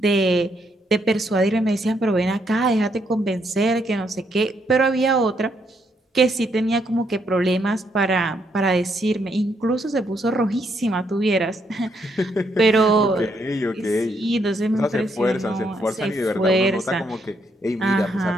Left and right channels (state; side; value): normal; both; correlation 0.75